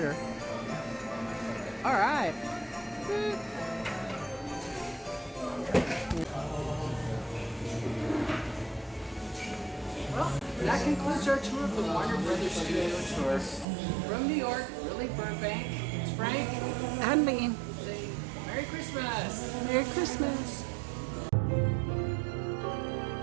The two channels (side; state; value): left; drops out; at 13.7 s